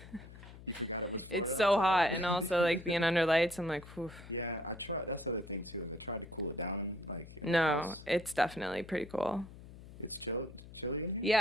It's so hot, and also like being under lights. I'm like, whew. Yeah, I try. That's the other thing too. I try to cool it down. Like. No, it's definitely pretty cool. It's chilly.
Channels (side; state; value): left; noise; hum, 17 dB below the sound